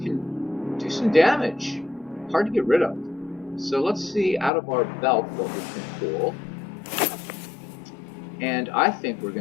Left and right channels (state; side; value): drops out; right; at 4.5 s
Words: do some damage. Hard to get rid of. So let's see out of our belt what we can pull. And I think we're